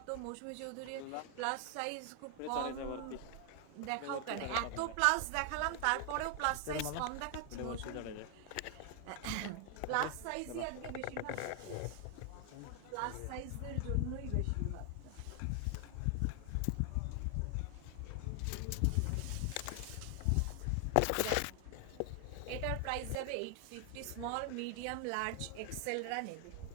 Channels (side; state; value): both; different; correlation 0.00